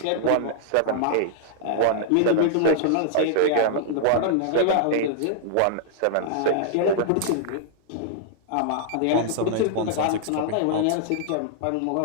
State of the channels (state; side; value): different; both; correlation -0.01